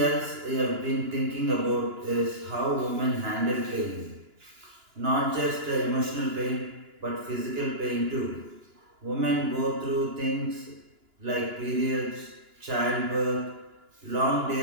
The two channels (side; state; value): left; late; 2.9 ms